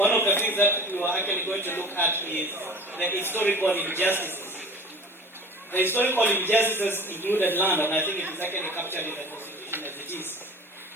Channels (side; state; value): both; normal; correlation 0.40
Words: of the things that we were actually going to look at is the historical injustices. The historical injustices included land, and I think it is actually captured in the Constitution as it is.